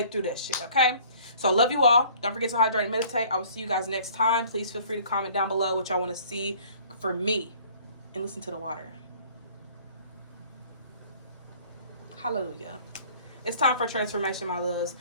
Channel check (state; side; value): inverted; both; correlation -0.53